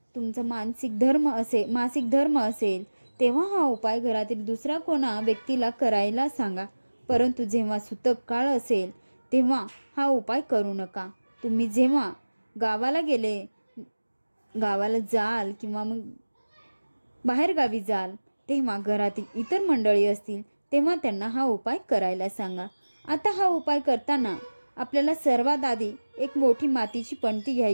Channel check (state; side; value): inverted; both; correlation -1.00